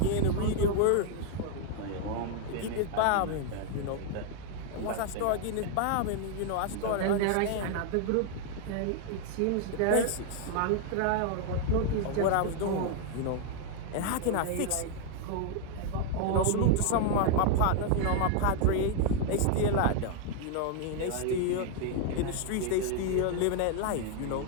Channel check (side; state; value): both; different; correlation 0.00